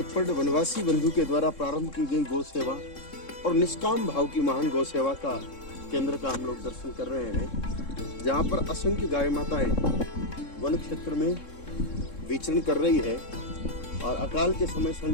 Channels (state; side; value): late; right; 3.7 ms